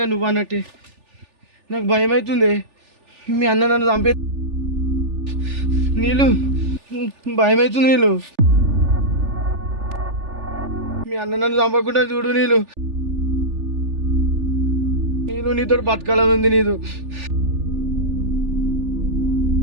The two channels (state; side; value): late; left; 3.4 ms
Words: నువ్వు అన్నట్టే. నాకు భయం అవుతుంది, మీ అన్న నన్ను చంపే. నీళ్ళు భయం అవుతుంది. నీళ్ళు మీ అన్న నన్ను చంపకుండా చూడు. నీళ్ళు నీళ్ళు నీతో బతకాలని ఉంది.